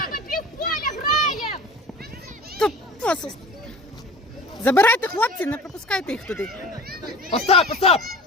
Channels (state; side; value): normal; both; correlation 0.40